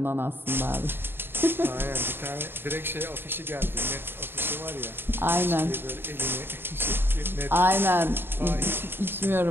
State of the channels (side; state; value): left; late; 0.10 ms